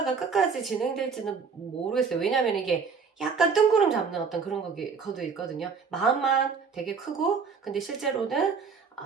끝까지 진행될지는 모르겠어요. 왜냐면 이게 약간 뜬구름 잡는 어떤 그런 거도 있거든요. 마음만 되게 크고 근데 실제로는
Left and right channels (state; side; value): quieter; left; 5.5 dB